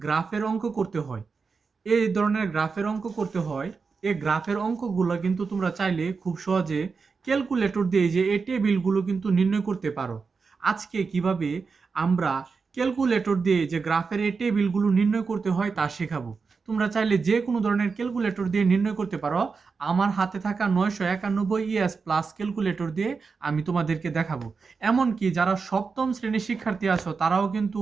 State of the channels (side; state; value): left; quieter; 4.9 dB